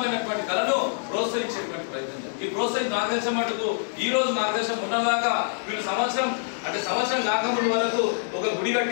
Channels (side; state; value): right; silent; digital silence